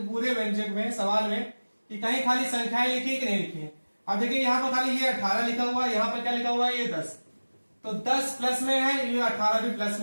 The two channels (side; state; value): both; inverted; correlation -1.00